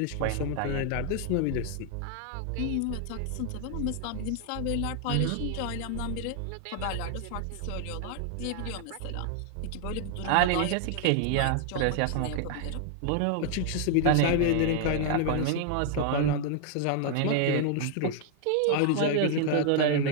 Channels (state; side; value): different; both; correlation 0.00